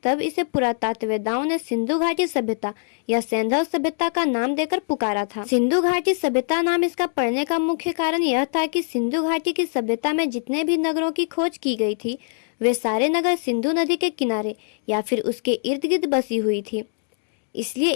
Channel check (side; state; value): right; silent; digital silence